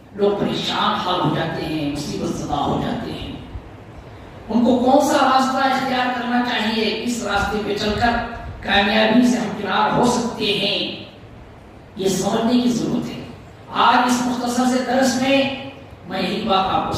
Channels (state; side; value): identical; both; correlation 1.00